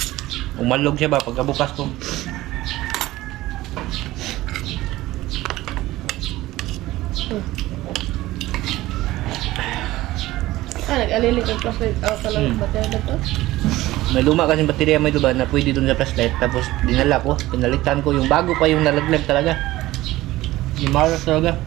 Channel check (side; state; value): left; quieter; 17.1 dB